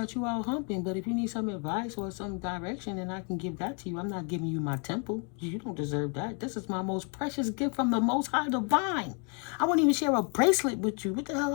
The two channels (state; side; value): quieter; right; 37.3 dB